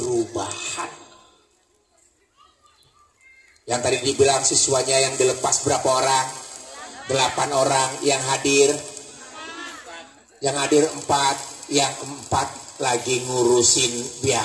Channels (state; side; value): identical; both; correlation 1.00